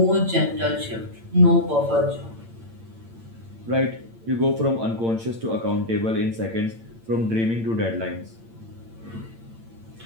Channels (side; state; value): left; late; 8.8 ms